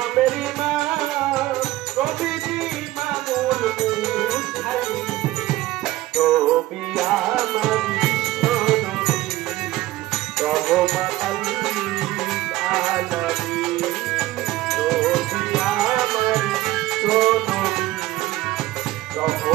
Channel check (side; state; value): left; quieter; 16.8 dB